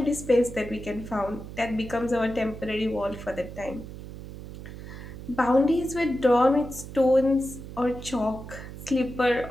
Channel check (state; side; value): noise; right; hum, 12 dB below the sound